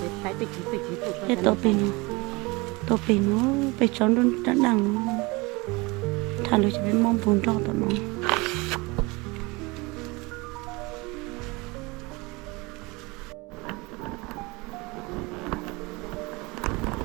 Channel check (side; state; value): left; quieter; 25.0 dB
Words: để phải tự chỉ cái tổ pin nó bị chọn luôn đã đằng thằng nó chỉ biết mong buồn cho tụi nó